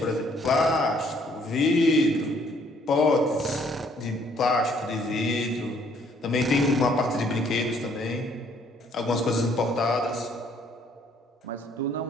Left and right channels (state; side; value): normal; both; correlation 0.64